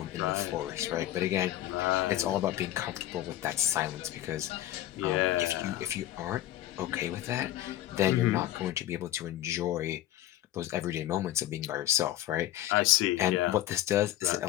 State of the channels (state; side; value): quieter; right; 13.7 dB